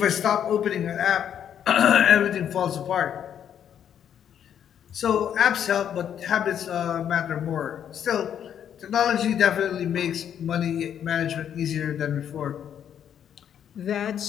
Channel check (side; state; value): right; quieter; 9.2 dB